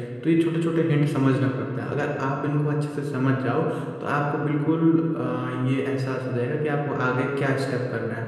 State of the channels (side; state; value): both; identical; correlation 1.00